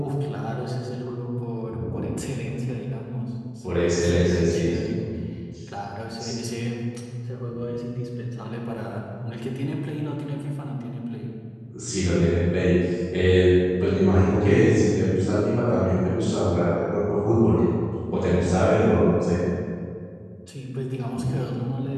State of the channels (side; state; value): both; identical; correlation 1.00